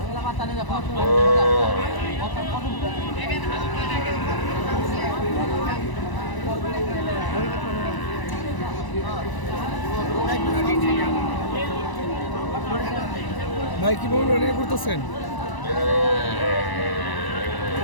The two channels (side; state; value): right; late; 1.0 ms